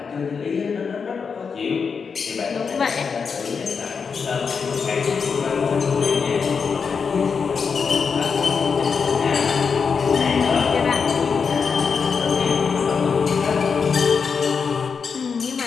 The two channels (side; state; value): right; quieter; 5.8 dB